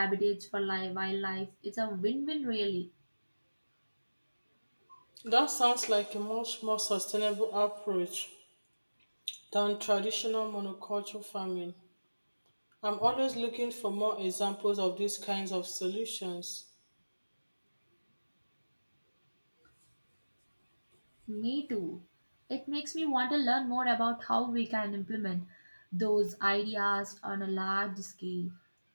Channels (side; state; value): both; inverted; correlation -1.00